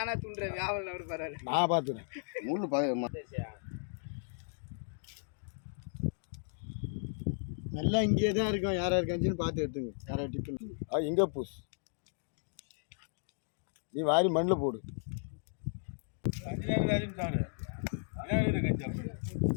துண்டுறேன் வியாபாரம் அப்படி பரவாயில்ல. நான் பார்த்துறேன். நல்லா இங்கே தான் இருக்கும். யாரா இருக்காச்சுன்னு பார்த்து எடுத்துங்க. யாரா டிஃபன் இங்கே பூஸ் நீ வாரி மண்ணில் போடு.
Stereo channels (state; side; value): silent; right; digital silence